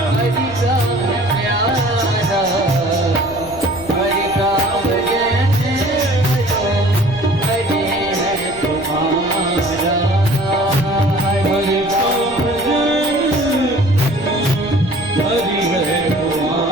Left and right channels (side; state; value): left; noise; rumble, 17 dB below the sound